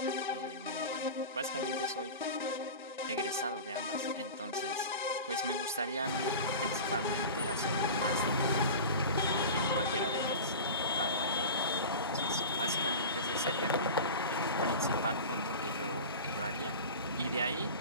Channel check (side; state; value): both; inverted; correlation -0.32